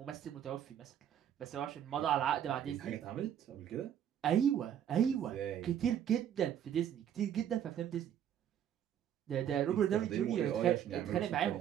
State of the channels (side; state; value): left; quieter; 9.8 dB